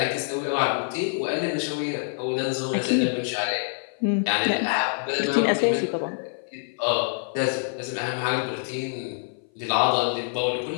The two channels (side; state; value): right; silent; 57 dB below the other